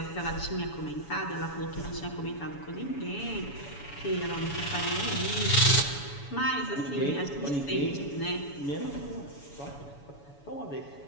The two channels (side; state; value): right; late; 7.1 ms